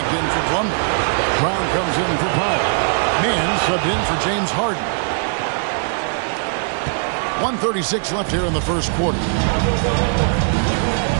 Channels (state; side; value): silent; left; digital silence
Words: in for Plumlee. Brown comes in for Powell. Mann subbed in for James Harden. 1:36 left here in the first quarter.